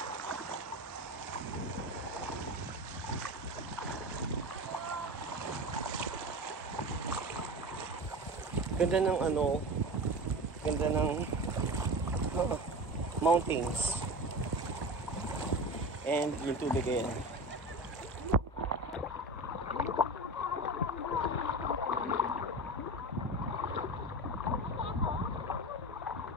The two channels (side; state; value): both; normal; correlation 0.28